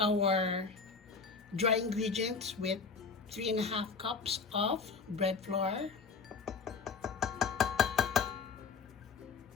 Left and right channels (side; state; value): right; quieter; 5.0 dB